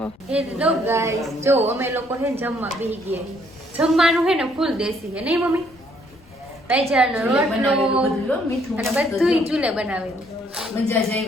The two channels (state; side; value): noise; left; rumble, 27 dB below the sound